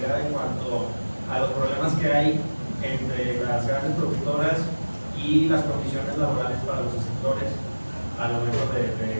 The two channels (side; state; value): both; inverted; correlation -1.00